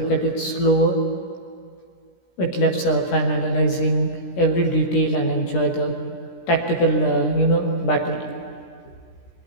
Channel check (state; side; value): late; right; 17 ms